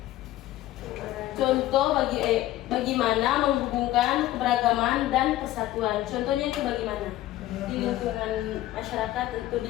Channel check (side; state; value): right; quieter; 14.9 dB